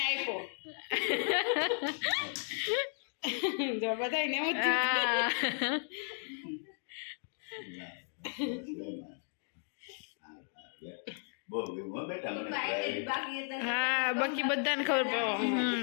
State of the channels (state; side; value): silent; right; 55 dB below the other